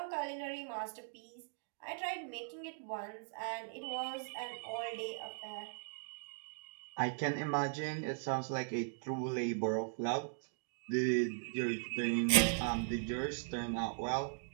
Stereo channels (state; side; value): silent; left; digital silence